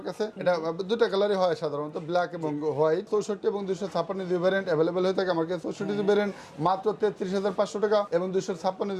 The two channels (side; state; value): both; identical; correlation 1.00